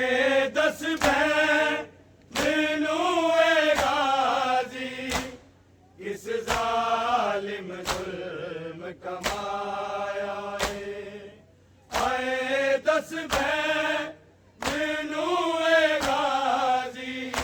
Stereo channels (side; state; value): both; identical; correlation 1.00